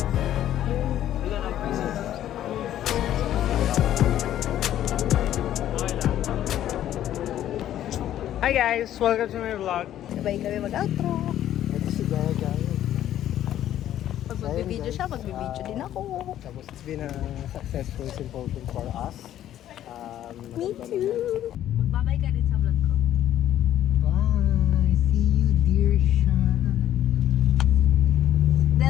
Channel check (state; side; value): quieter; right; 11.9 dB